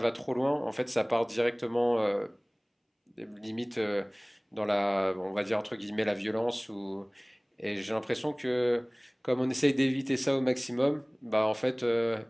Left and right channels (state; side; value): identical; both; correlation 1.00